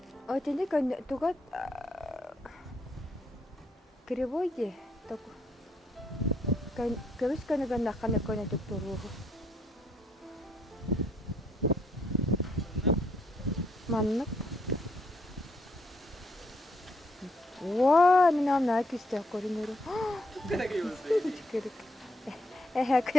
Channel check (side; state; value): both; normal; correlation 0.72